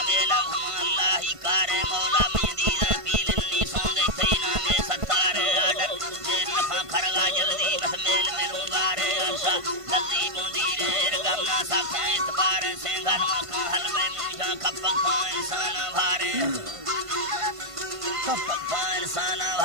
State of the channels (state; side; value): late; left; 1.5 ms